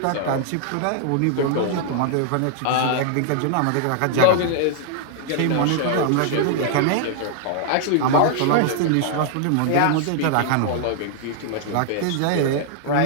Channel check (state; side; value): different; both; correlation -0.01